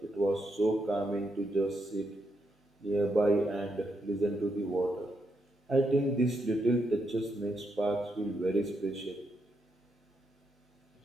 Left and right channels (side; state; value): both; normal; correlation 0.80